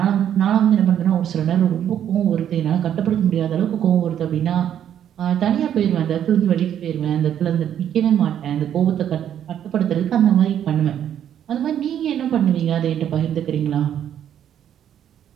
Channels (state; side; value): quieter; left; 9.9 dB